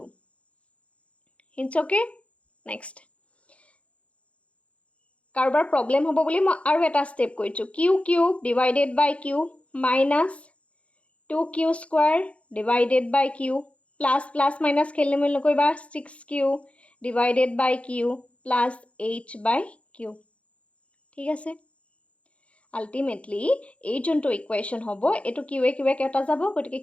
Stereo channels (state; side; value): late; right; 0.063 ms